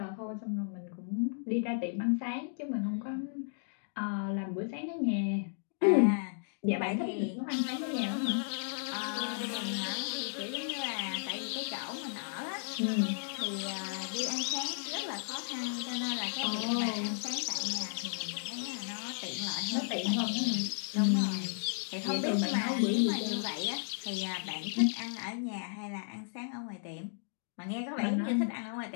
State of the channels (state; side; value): silent; right; digital silence